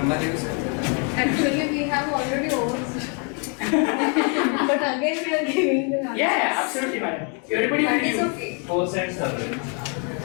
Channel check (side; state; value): right; quieter; 37.7 dB